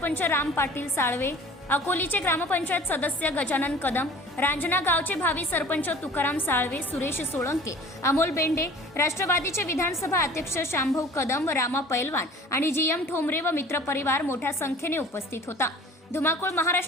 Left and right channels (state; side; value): normal; both; correlation 0.46